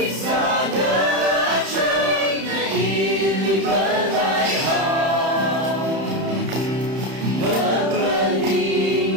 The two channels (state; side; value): late; left; 31 ms